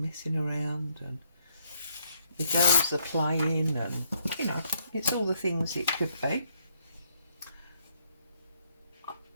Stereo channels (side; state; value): both; inverted; correlation -0.71